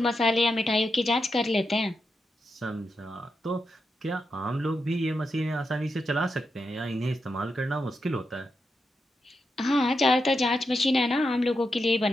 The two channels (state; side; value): normal; both; correlation 0.86